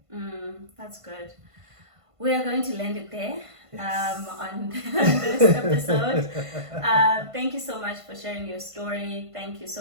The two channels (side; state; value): left; late; 1.5 ms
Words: That's good. We are going to land it there on this episode. Thank you so much for sharing your story. Thank you